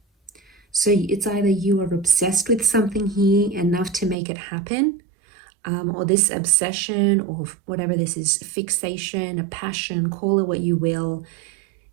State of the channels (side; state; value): left; drops out; at 4.2 s